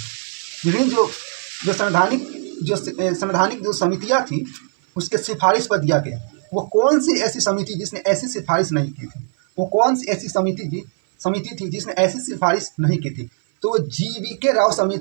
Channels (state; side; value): silent; left; 56 dB below the other